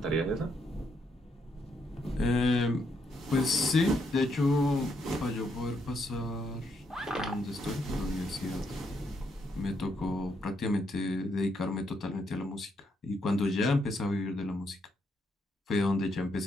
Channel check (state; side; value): normal; both; correlation 0.76